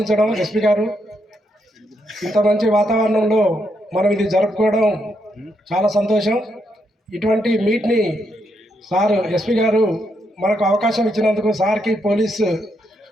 ఎస్పీ గారు ఇంత మంచి వాతావరణంలో మనం ఇది జరుపుకోవడం చాలా సంతోషం. ఇటువంటి మీట్ని సార్ ఎస్పీ గారు మనకు అవకాశం ఇచ్చినందుకు సార్కి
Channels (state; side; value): normal; both; correlation 0.79